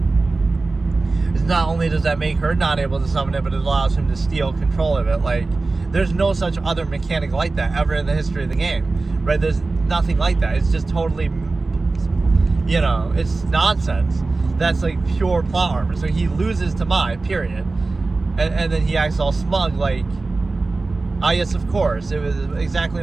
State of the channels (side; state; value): left; quieter; 3.6 dB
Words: It's not only does that make her not able to summon it, but it allows him to steal control of it. Like, there's no such other mechanic like that ever in the history of the game, right? There's nothing like that. It's just totally, you know, it's nonsense. That's like pure plot armor. So he loses to Mai, period. And then he acts all smug, like, ah, yes, of course, it was exactly